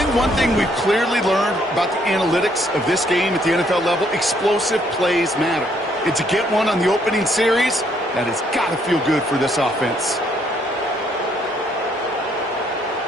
one thing we've clearly learned about the analytics of this game at the NFL level, explosive plays matter. And to get one on the opening series, that has got to feel good for this offense.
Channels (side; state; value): both; normal; correlation 0.69